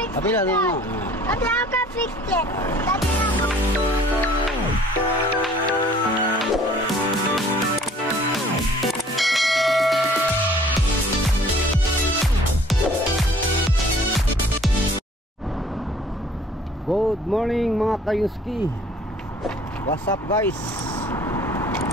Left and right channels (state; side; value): normal; both; correlation 0.54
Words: it. Apila na nga. Daddy, I can fix it. Daddy, I can... Good morning mga kayuski. What's up guys?